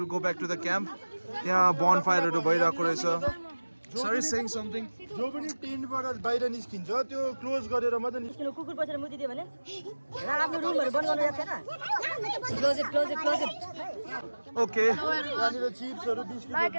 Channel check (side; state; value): both; inverted; correlation -1.00